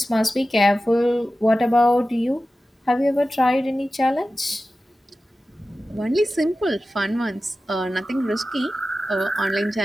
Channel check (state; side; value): normal; both; correlation 0.94